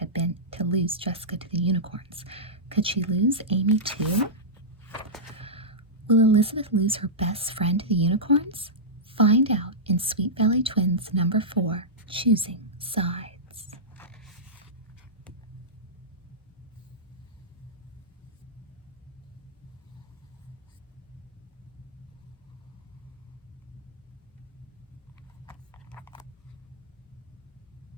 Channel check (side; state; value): both; normal; correlation -0.13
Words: been to lose Jessica to the unicorns. Could she lose Amy too? Will Elizabeth lose her best friend to the unicorns? Find out in Sweet Valley Twins number 4, Choosing Side.